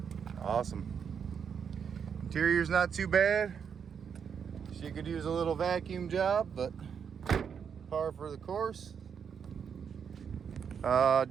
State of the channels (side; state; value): left; quieter; 7.1 dB